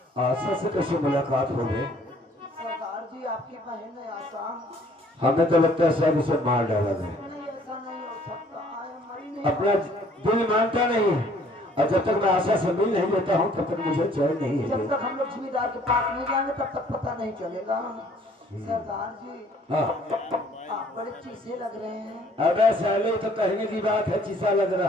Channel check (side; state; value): both; normal; correlation 0.59